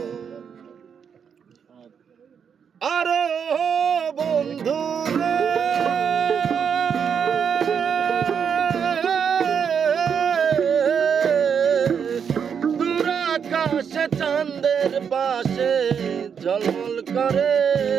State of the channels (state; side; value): quieter; left; 7.2 dB